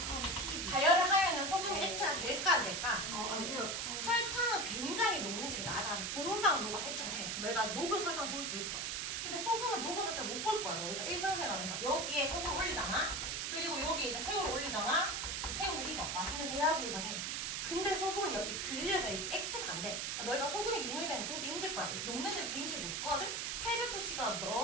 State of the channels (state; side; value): noise; right; hiss, 2 dB below the sound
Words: 가열을 하면은 소금이 액체가 될까 안 될까? 안 돼요. 설탕은 굉장히 녹는 집이 낮아서 금방 녹아서 액체가 돼. 너희가 녹은 설탕 볼 수 있어. 근데 소금은 녹은 설탕 못 볼 거야. 너희가 일상생활에서 여기에 소금 올리잖아. 그리고 여기에 이제 새우를 올리잖아. 새우는 이거 맛있는 대하구이가 돼. 근데 소금은 여기 그려져 있지 액체가 안 돼. 그러니까 너희가 소금이 융해되면 보기 힘들 거야. 녹는 집이 굉장히 높거든. 800도씨가